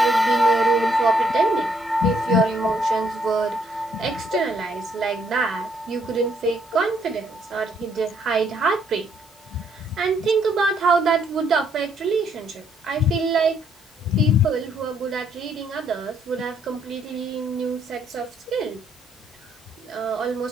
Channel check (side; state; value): both; normal; correlation 0.70